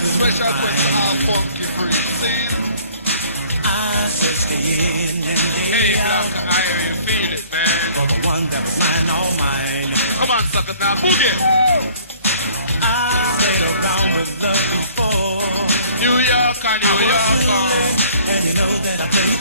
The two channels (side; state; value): both; inverted; correlation -0.54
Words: quest to our funky free scene. I searched the in and Hey, the Black out Iron, you feel it, man. for the one that was mine, all mine. Come on, suckers, now boogie. I played around with love before. New York and New York. And you know that I played